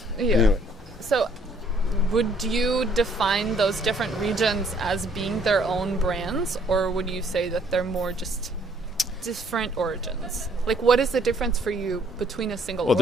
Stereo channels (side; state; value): both; normal; correlation 0.64